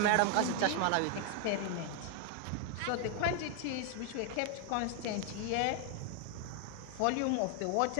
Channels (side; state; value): both; different; correlation 0.00